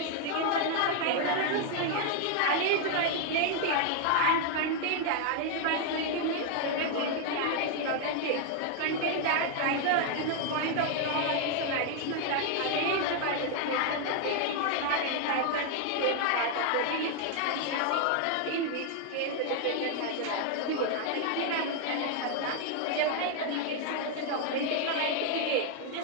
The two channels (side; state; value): both; different; correlation 0.00